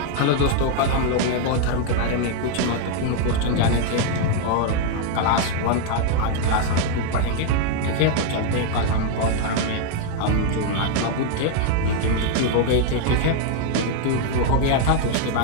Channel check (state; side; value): different; both; correlation 0.00